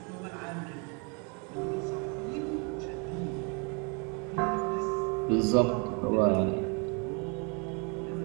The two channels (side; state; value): left; quieter; 34.6 dB